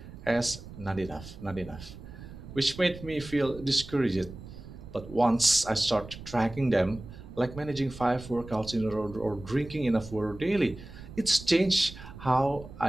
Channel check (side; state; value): right; noise; rumble, 15 dB below the sound